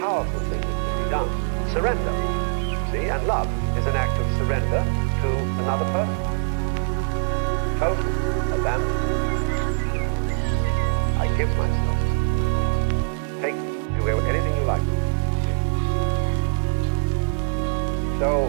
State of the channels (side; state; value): left; silent; digital silence